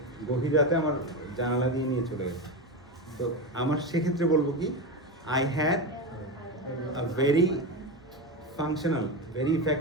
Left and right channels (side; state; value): both; normal; correlation 0.17